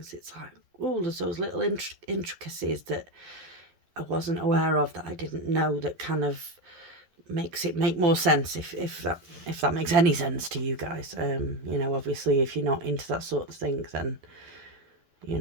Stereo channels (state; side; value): late; left; 12 ms